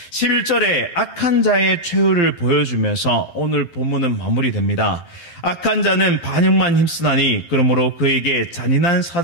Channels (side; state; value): right; late; 12 ms